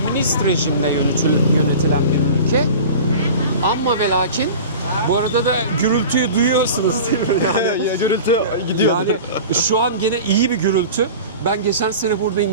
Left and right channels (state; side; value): inverted; both; correlation -0.36